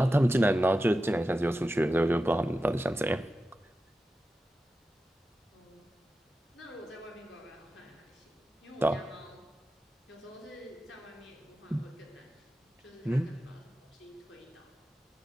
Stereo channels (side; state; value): both; normal; correlation 0.92